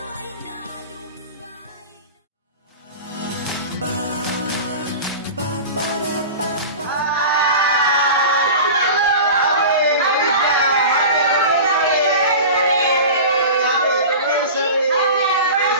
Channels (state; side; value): inverted; both; correlation -0.33